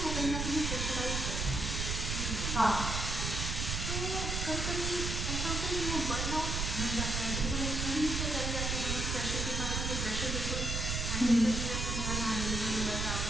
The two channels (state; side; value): noise; right; rumble, 1 dB below the sound